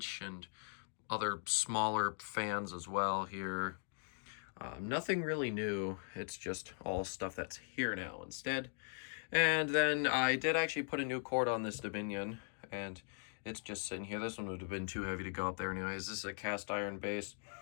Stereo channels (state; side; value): silent; right; 51 dB below the other